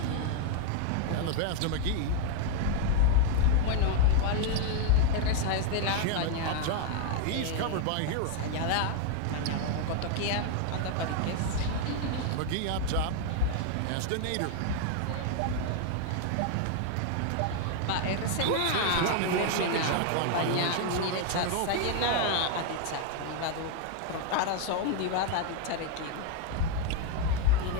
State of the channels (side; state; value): both; different; correlation 0.00